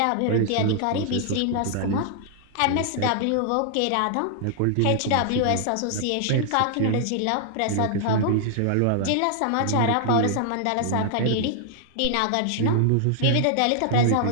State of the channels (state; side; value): different; both; correlation 0.00